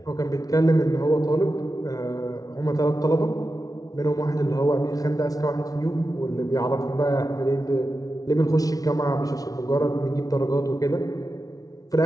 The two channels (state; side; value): late; right; 0.18 ms